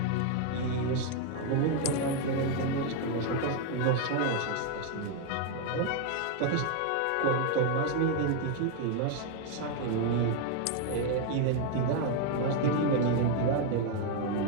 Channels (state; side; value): different; both; correlation 0.01